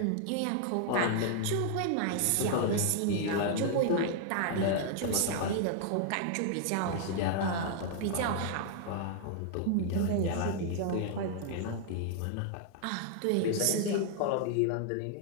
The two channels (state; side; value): different; both; correlation -0.01